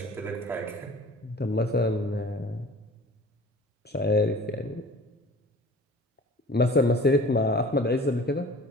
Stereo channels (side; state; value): both; normal; correlation 0.45